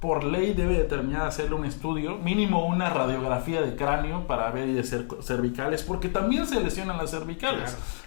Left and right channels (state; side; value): silent; right; digital silence